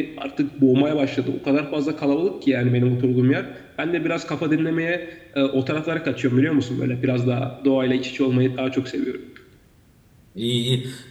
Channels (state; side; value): identical; both; correlation 1.00